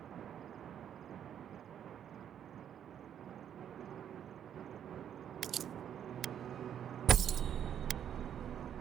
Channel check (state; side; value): quieter; left; 9.4 dB